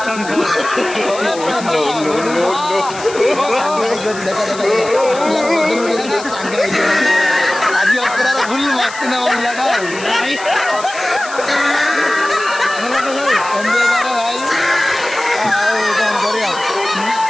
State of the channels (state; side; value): noise; left; hiss, 14 dB below the sound